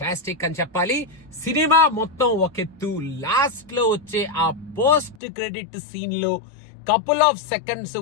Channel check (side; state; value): right; drops out; at 5.2 s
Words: అని చెప్పాలి. Cinema మొత్తం ఒకెత్తు, లాస్ట్ లో వచ్చే ఆ పోస్ట్ క్రెడిట్ సీన్ లో కపుల్ ఆఫ్ సెకండ్స్